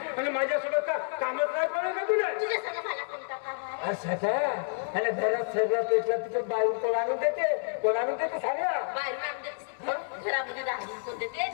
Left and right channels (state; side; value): silent; right; digital silence